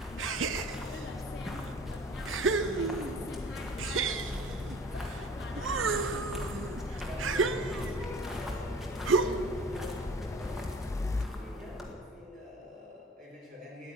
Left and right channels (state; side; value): normal; both; correlation 0.44